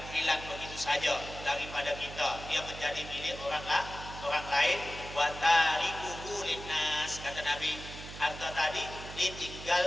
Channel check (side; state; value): right; noise; hum, 12 dB below the sound